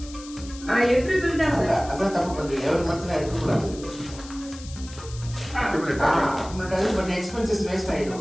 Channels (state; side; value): noise; left; hiss, 17 dB below the sound